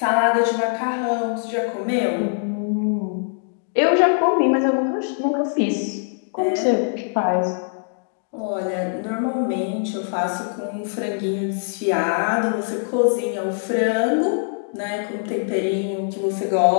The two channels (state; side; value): silent; right; digital silence